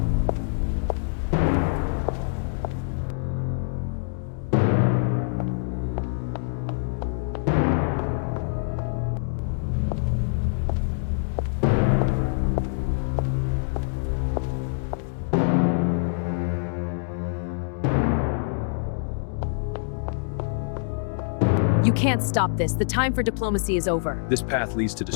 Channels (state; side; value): silent; right; digital silence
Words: You can't stop this. The time for diplomacy is over. This path leads to